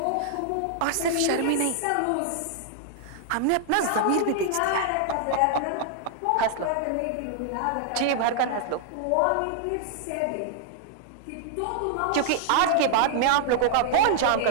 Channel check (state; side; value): different; both; correlation -0.01